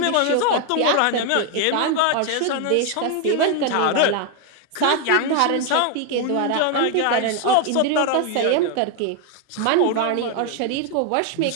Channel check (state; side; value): different; both; correlation 0.01